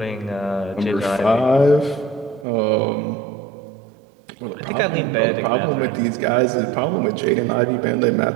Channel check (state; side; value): drops out; left; at 2.5 s